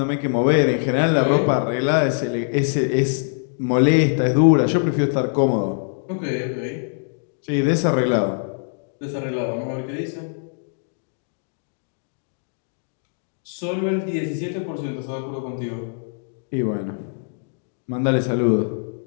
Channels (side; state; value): right; silent; digital silence